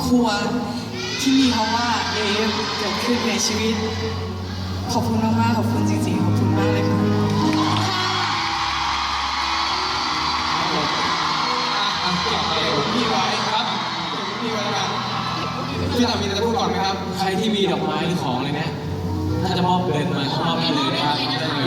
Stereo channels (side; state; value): both; identical; correlation 1.00